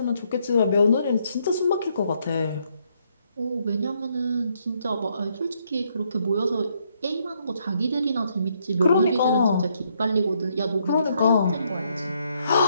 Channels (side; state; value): both; inverted; correlation -0.73